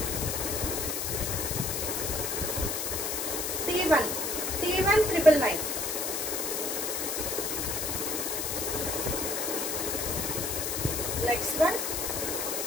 T1 999. నెక్స్ట్ వన్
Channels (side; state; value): left; noise; hiss, 1 dB below the sound